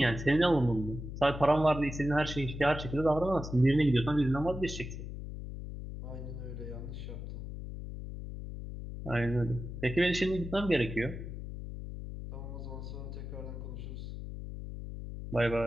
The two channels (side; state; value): left; noise; hum, 8 dB below the sound